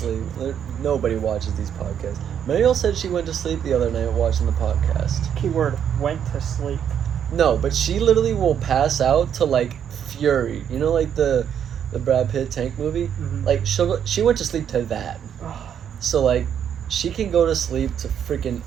Nobody watches these podcasts. Mariel said she went to sleep the other night watching the podcast. Keyword, went to sleep. No, but she literally will pass out to like Fury. You know, like the the Brad Pitt tank movie. Mhm. Like she went to sleep to that. So like, she can go to sleep to freaking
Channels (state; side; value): quieter; left; 8.8 dB